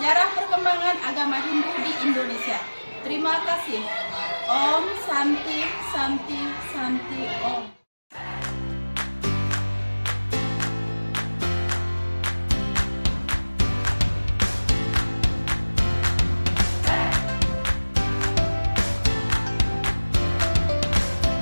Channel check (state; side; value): inverted; both; correlation -1.00